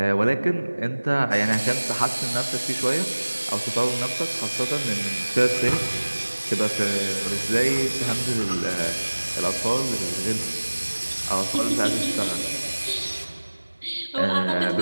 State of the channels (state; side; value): inverted; both; correlation -1.00